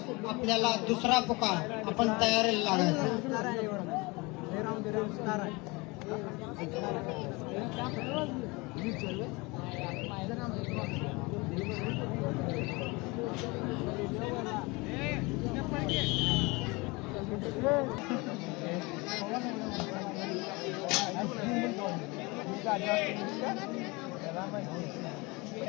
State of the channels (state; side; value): quieter; right; 25.5 dB